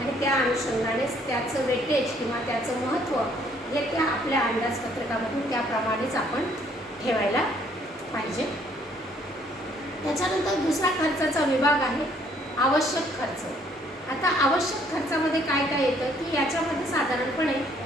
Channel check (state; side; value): normal; both; correlation 0.64